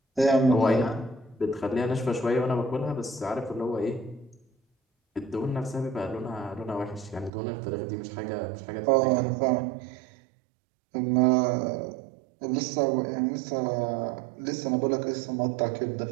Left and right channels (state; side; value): drops out; left; at 7.3 s